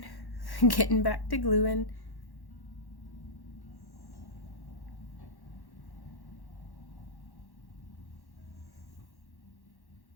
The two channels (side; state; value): right; late; 1.1 ms